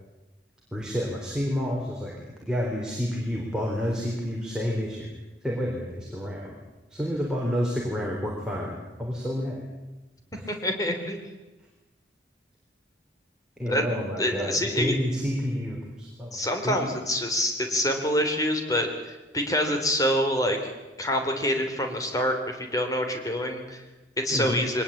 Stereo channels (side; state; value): both; normal; correlation 0.52